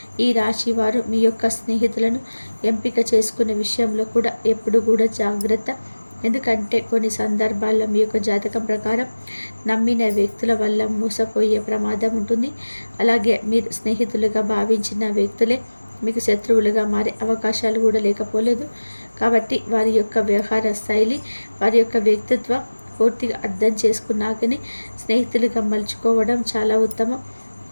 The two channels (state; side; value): inverted; both; correlation -1.00